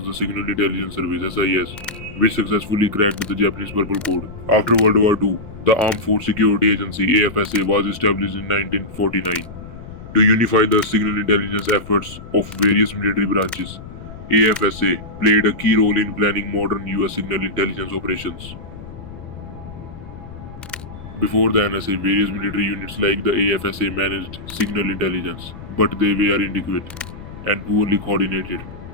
the Signal Intelligence Service SIS, which successfully cracked the Japanese Purple Code. After World War II, the Armed Force Security Agency AFSA was established in 1949 to unify the signal intelligence efforts of various military branches. AFSA played a key role in planning modern US signal intelligence operations. Before the NSA, various military units like the AFSA managed signal intelligence, but they were inadequate and poorly coordinated.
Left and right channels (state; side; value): noise; left; rumble, 14 dB below the sound